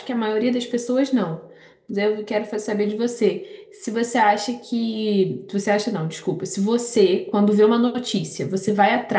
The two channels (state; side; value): identical; both; correlation 1.00